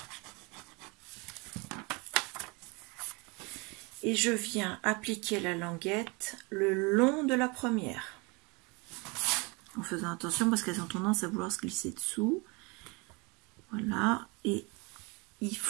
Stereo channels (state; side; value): quieter; left; 28.5 dB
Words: Et je viens appliquer la languette le long de la première. En faisant attention parce qu'elles ont tendance à vouloir se glisser dessous. Voilà. Et il